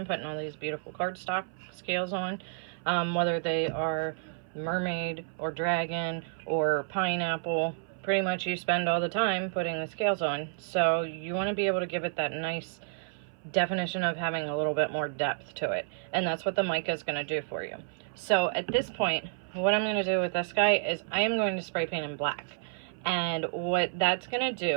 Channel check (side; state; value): left; silent; 58 dB below the other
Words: putting all these beautiful cardstock scales on, whether they are mermaid or dragon or pineapple. Pretty much you spend all the time putting the scales on, so you want to be able to give it that nice definition of having a little bit more depth to it, and that's what the mica is going to do for you. So at this point, what I'm going to do with this guy is I am going to spray paint in black, and what that's going to